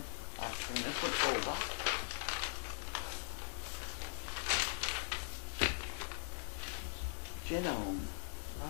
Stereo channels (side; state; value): right; silent; digital silence